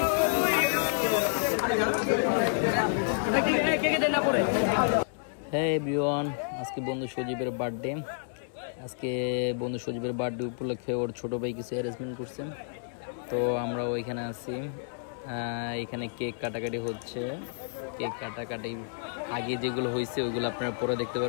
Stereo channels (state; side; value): silent; right; digital silence